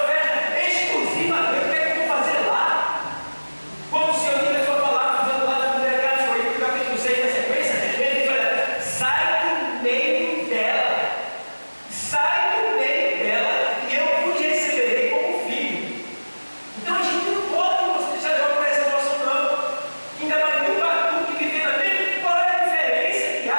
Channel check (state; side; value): inverted; both; correlation -1.00